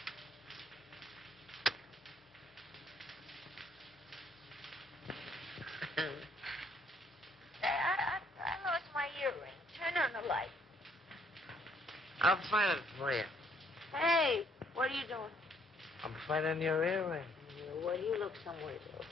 I lost my earring. Turn on the light. I'll find it for you. Hey, what are you doing? I'm finding your earring. Well, you look somewhere else.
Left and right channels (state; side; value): normal; both; correlation 0.67